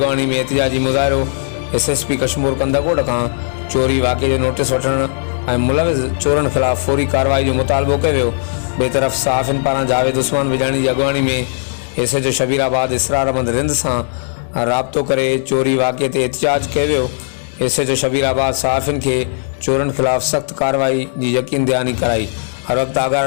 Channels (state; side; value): silent; right; digital silence